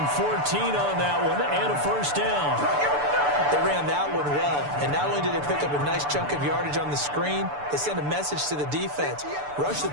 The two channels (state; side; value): late; left; 6.9 ms